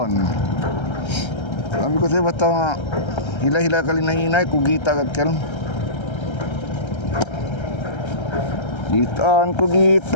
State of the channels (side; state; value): right; late; 1.3 ms